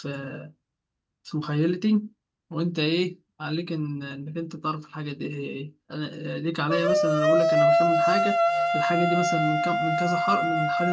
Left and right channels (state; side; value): identical; both; correlation 1.00